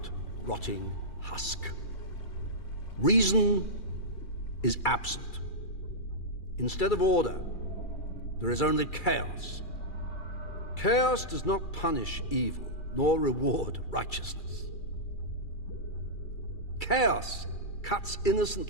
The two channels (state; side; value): late; right; 2.3 ms